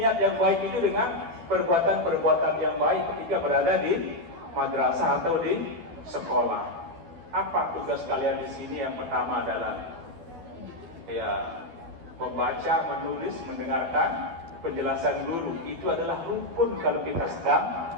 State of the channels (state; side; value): late; left; 12 ms